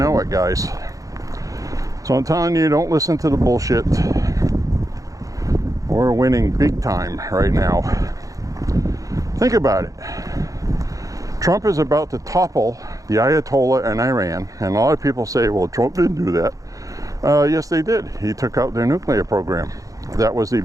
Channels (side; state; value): left; late; 0.17 ms